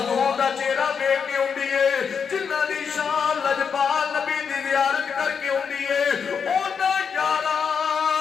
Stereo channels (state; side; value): quieter; right; 6.4 dB